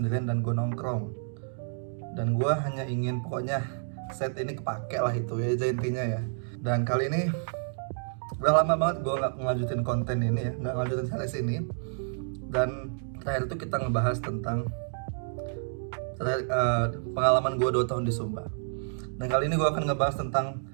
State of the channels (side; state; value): left; silent; digital silence